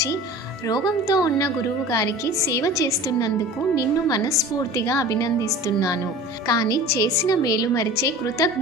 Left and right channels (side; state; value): both; normal; correlation 0.39